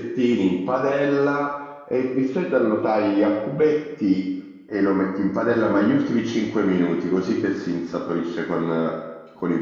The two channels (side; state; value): both; identical; correlation 1.00